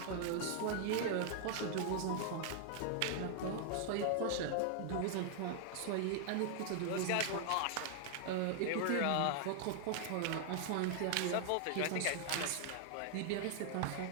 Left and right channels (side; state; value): both; different; correlation 0.00